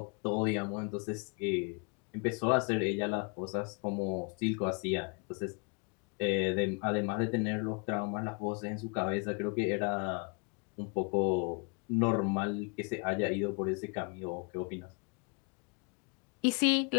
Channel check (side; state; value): right; quieter; 34.3 dB